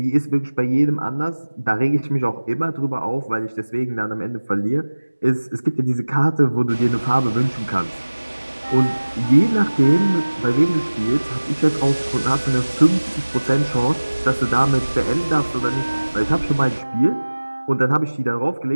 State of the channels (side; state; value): both; inverted; correlation -1.00